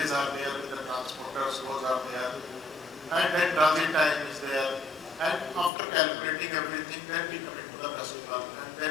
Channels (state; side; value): drops out; right; at 5.7 s